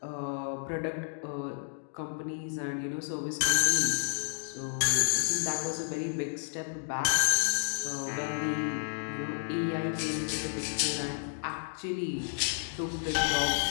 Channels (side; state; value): right; silent; digital silence